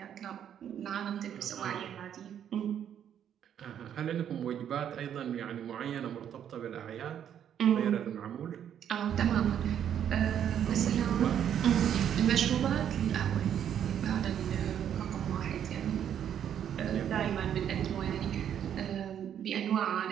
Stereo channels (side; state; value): left; quieter; 9.4 dB